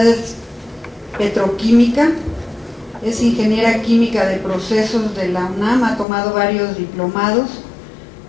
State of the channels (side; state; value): right; drops out; at 6.1 s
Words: es petroquímica. Es ingeniera química de procesos de la UNAM, ha tomado varios diplomados.